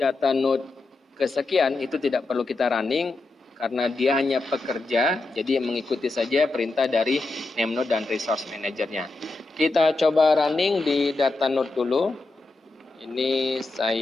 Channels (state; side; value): quieter; right; 3.3 dB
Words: node kesekian itu tidak perlu kita running karena dia hanya pekerja, jadi mengikuti saja perintah dari name node dan resource manajernya. Kita coba running di data node dulu. Ini